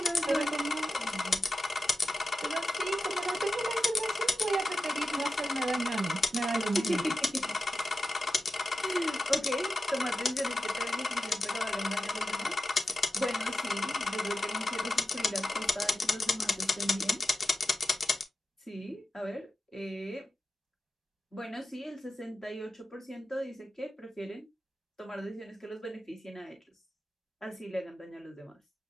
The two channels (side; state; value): both; normal; correlation 0.91